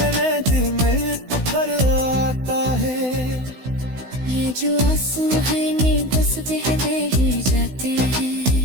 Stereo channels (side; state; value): left; late; 16 ms